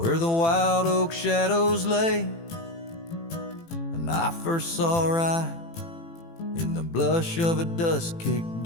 the wild oak shadows lay. And I first saw right in the blush of a dusk-kicked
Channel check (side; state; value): right; late; 18 ms